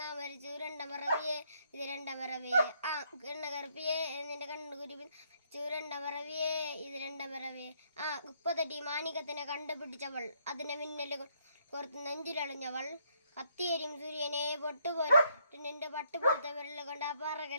നാ മരിച്ചു രണ്ടാം പറവിയേ ഇത് രണ്ടാം പറവിയേ എണ്ണ കറുപ്പിയേ നിന്റെ കണ്ണു കുരുവി രണ്ടാം പറവിയേ ഇത് രണ്ടാം പറവിയേ കുപ്പത്തട്ടി മാണികത്തിനെ കണ്ടുപിടിച്ചവൾ അതിനെ മിന്നല് കോർത്ത് നെഞ്ചിലളിഞ്ഞവൾ കത്തിയരിയും സൂര്യനെ പൊട്ടുപോലെ നിന്റെ പട്ടുപോലത്തെ വിരൽ കൊണ്ട് ആ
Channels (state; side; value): inverted; both; correlation -0.72